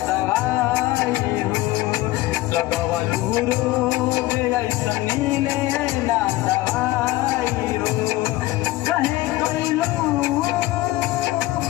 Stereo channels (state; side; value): quieter; right; 17.6 dB